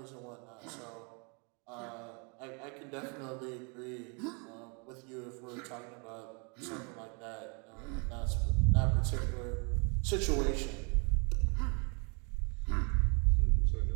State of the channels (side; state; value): left; quieter; 34.7 dB